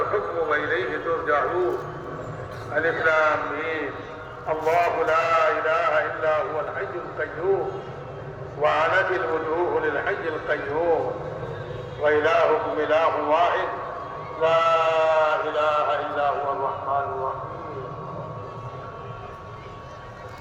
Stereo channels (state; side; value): identical; both; correlation 1.00